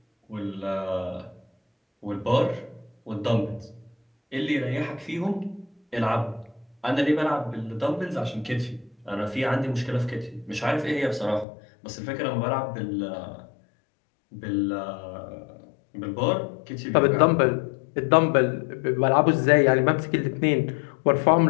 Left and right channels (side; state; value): right; drops out; at 11.5 s